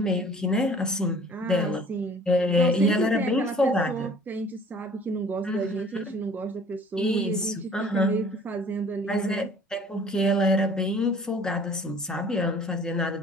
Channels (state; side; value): normal; both; correlation 0.51